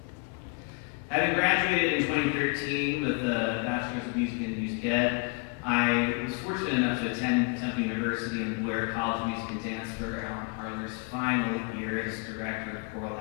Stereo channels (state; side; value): quieter; right; 31.9 dB